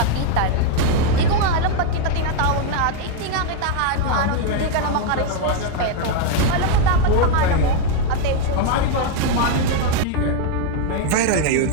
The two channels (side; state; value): both; different; correlation 0.01